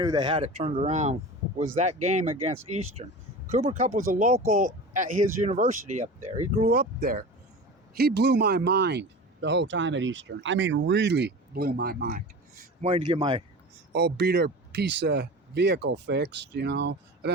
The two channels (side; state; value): both; normal; correlation 0.33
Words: they had it turned around, was that game against Eastern. Cooper Kupp was a local at his university up there. He grew up there. He blew my mind the whole time at Eastern. I mean, really blew my mind. I'm waiting to get my old beater piece of vehicle fixed, I've